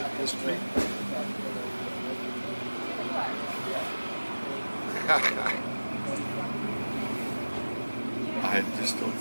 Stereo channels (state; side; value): inverted; both; correlation -1.00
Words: history. I just don't